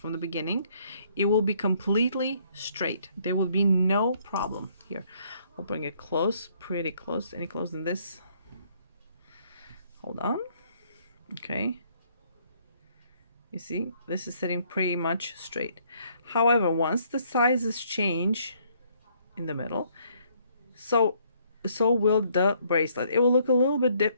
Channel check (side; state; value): both; inverted; correlation -0.66